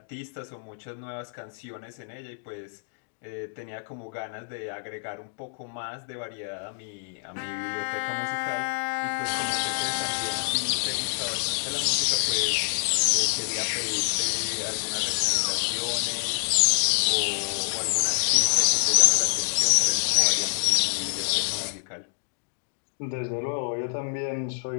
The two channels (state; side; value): silent; right; digital silence